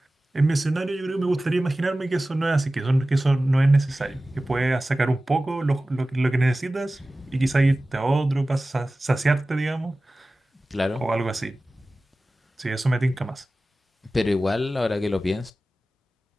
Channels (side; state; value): both; normal; correlation 0.96